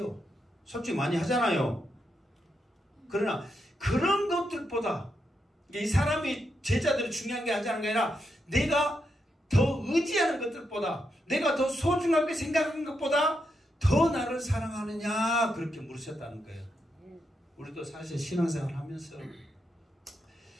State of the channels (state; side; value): normal; both; correlation 0.83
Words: 솔직히 많이 하잖아요. 그러나 그런 것들보다 이 사람이 제자들이 중요한 게 하자는 게 아니라 내가 더 의지하는 것들보다 내가 더 소중하게 생각하는 것보다 더 나를 사랑하느냐 그렇게 물으셨다는 거예요. 우리도 사실 신앙생활 하면서